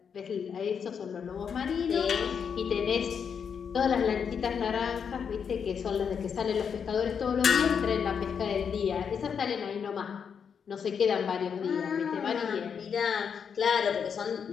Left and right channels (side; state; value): right; quieter; 6.9 dB